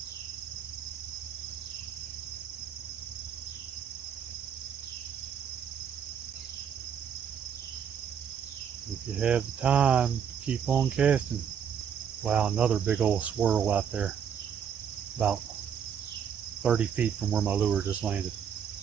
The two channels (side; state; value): left; quieter; 8.1 dB